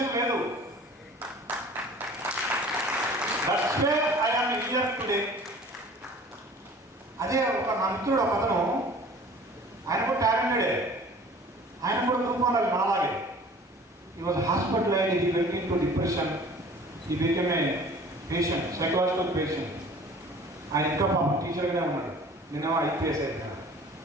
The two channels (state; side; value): normal; both; correlation 0.47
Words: లేదు. That's way I am here today. అదే ఒక నా మిత్రుడు ఒక అతను, ఆయన కూడా టాలెంటెడే, ఆయన కూడా గ్రూప్ 1 నాలాగే. He was hospitalized, he went into depression, he became a patient, psychological patient. ఆయన ఇంకా పాపం టీచర్గానే ఉన్నాడు, నేనేమో IPS అయిపోయాను.